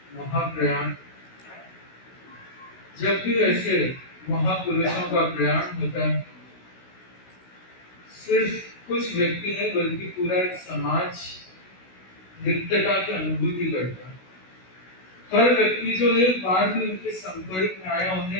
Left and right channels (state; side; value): late; right; 16 ms